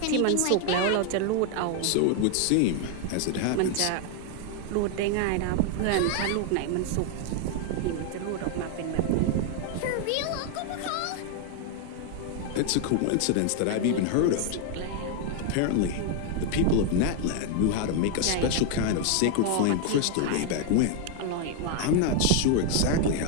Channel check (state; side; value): different; both; correlation 0.00